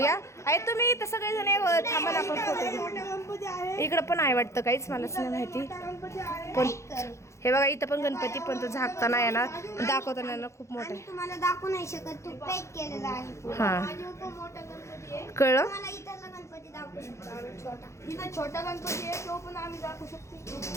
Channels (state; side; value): late; right; 0.14 ms